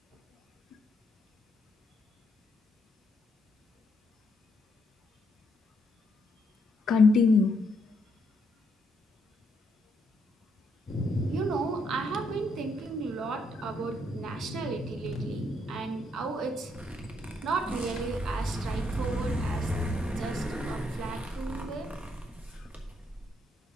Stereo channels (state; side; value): normal; both; correlation 0.75